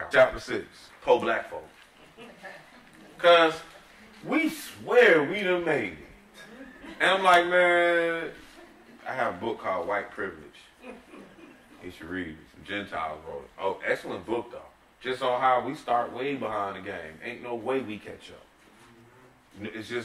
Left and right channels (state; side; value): identical; both; correlation 1.00